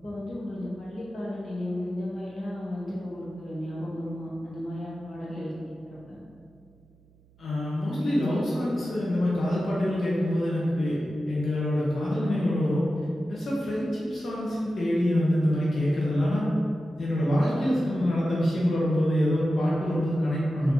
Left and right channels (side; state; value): right; noise; hum, 30 dB below the sound